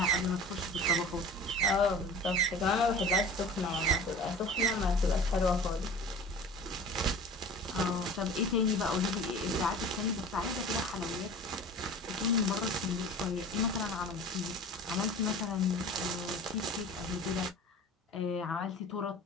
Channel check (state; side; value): normal; both; correlation 0.40